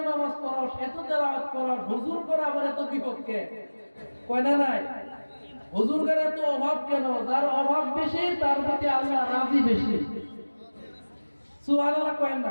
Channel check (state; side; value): inverted; both; correlation -1.00